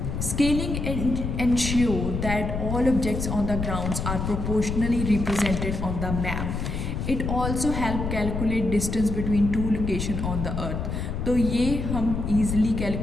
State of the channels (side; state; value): left; noise; rumble, 3 dB below the sound